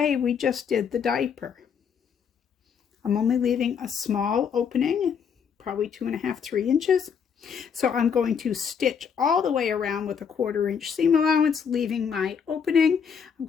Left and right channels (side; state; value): right; quieter; 6.9 dB